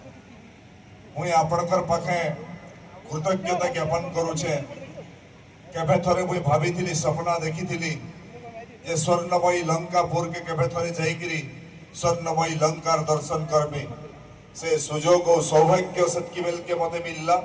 मुई आपणकर पाखे कृतज्ञता ज्ञापन करू छे केबे थरे मुई भाबीथिली सपना देखिथिली जे स्वर्णमयी लंकापुर के केबे थरे जाईकरी स्वर्णमयी लंकार दर्शन करबी से सुजोग और सौभाग्य सत्की बेल के मते मिलला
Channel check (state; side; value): identical; both; correlation 1.00